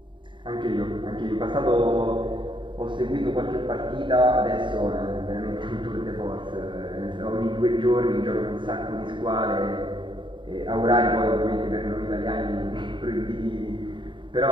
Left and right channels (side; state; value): left; late; 0.23 ms